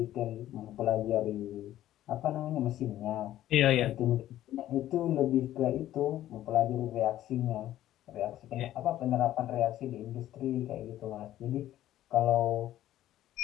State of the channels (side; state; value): right; quieter; 13.3 dB